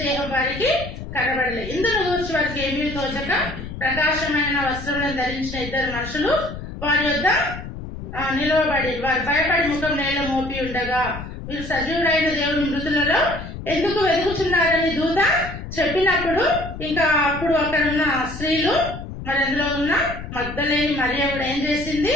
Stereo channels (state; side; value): noise; left; rumble, 10 dB below the sound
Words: దేహం వారికి కనబడలేదు. ఇందులో కూర్చి వారికి ఏమీ తోచక ప్రకాశమైన వస్త్రములను ధరించిన 2 మనుషులు వారి వద్ద నిలవబడి వారు భయపడి ముఖం నేల మోపి ఉండగా, మీరు సజీవుడైన దేవుని మృతులలో ఎందుకు వెతుకుతున్నారని దూత చెప్పినప్పుడు, ఇంకా అప్పుడు అక్కడ ఉన్న స్త్రీలు మరి అందులో ఉన్న మగ్దలేని మరియ కూడా ఏం చేసింది?